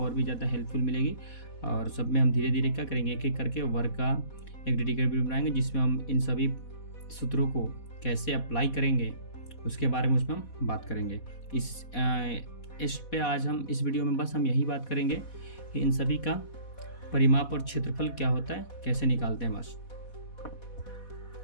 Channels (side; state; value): right; late; 4.1 ms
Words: भी ज़्यादा हेल्पफुल मिलेगी। और सब में हम धीरे धीरे क्या करेंगे, एक एक करके वर्ग का एक डेडिकेटेड वीडियो बनाएंगे, जिसमें हम इन सभी सूत्रों को कैसे अप्लाई करेंगे उसके बारे में उसमें हम बात करेंगे। इस पे आज हम इस वीडियो में बस हम यही बात करेंगे कि इन सभी का परिमाप और क्षेत्रफल क्या होता है, कैसे निकालते हैं बस।